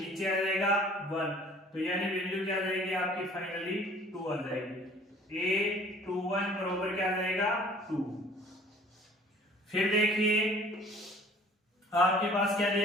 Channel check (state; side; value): normal; both; correlation 0.51